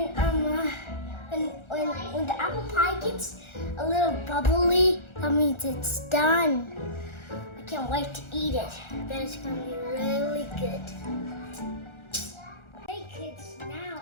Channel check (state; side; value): late; right; 1.4 ms